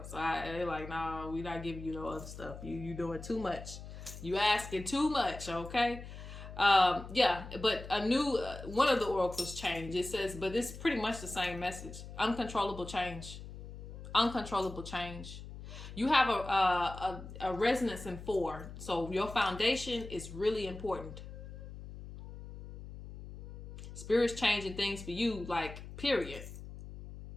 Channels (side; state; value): left; noise; hum, 12 dB below the sound